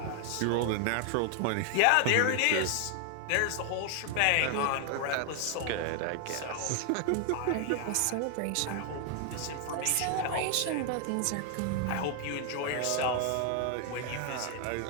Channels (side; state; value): both; different; correlation 0.00